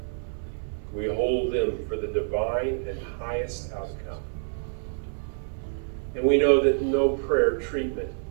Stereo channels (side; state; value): left; silent; 60 dB below the other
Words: We hold them for the divine and highest outcome. And we know that no prayer treatment